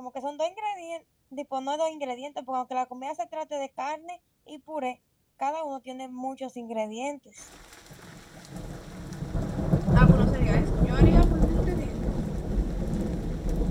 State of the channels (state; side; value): identical; both; correlation 1.00